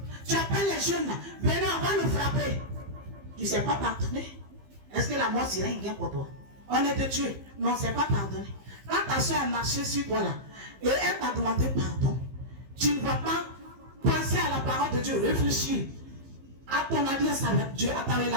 Tu appelles les jeunes là, venez, on va le frapper. Tu ne sais pas pardonner. Est-ce que la mort serait une guerre pour toi? On est de Dieu, mais on ne sait pas pardonner. Quand ta soeur a marché sur toi là, et elle t'a demandé pardon, tu ne vas pas penser à la parole de Dieu, réfléchir à ton alliance avec Dieu, à ta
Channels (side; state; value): left; late; 15 ms